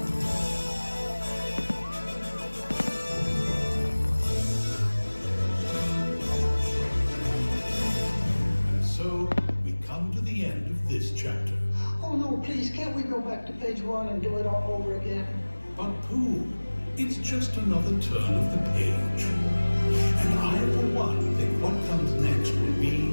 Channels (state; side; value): inverted; both; correlation -1.00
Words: And so we come to the end of this chapter. Oh no, please, can't we go back to page 1 and do it all over again? But Pooh, it's just another turn of the page. And I, for one, think what comes next will